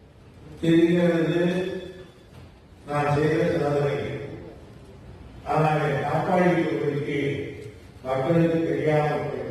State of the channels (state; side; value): identical; both; correlation 1.00